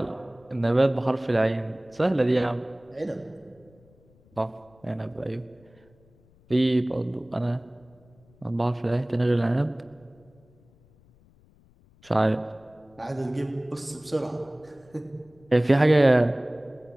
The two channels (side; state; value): left; noise; rumble, 30 dB below the sound